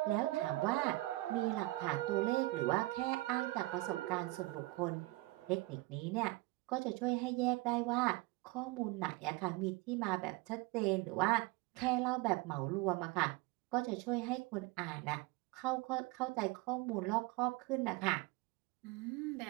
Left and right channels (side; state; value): left; quieter; 20.9 dB